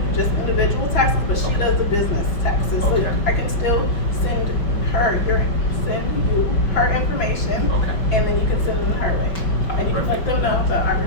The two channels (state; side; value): late; right; 5.8 ms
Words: just individual taxes, but she does the business taxes. So Okay. I can still send you her information, Okay. and then you can send them her way, and you can let them know that I